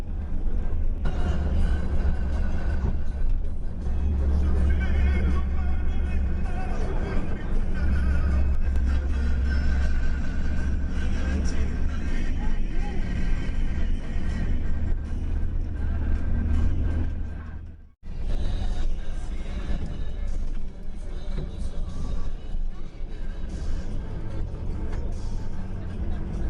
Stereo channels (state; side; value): identical; both; correlation 1.00